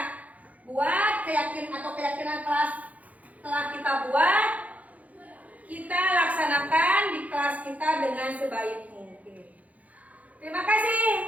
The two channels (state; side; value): late; left; 0.072 ms